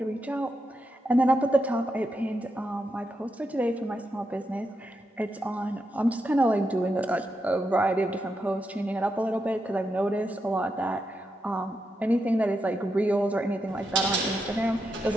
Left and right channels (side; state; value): both; normal; correlation 0.85